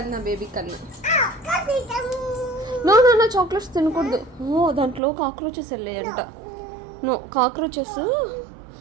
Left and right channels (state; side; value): drops out; left; at 5.0 s